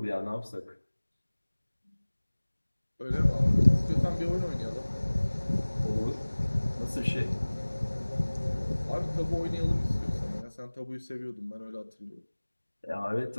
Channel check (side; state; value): both; inverted; correlation -1.00